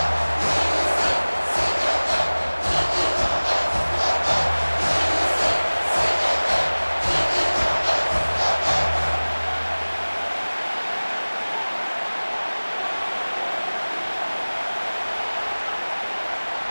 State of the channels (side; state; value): both; inverted; correlation -1.00